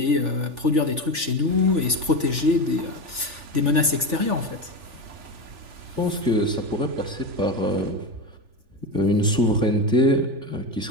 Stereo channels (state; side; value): late; left; 3.4 ms